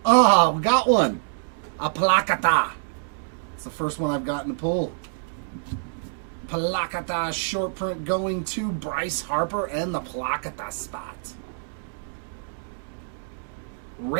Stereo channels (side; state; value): left; silent; digital silence